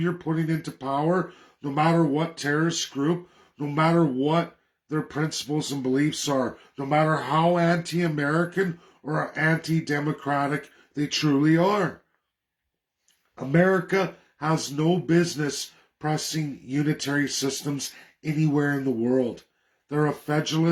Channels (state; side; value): identical; both; correlation 1.00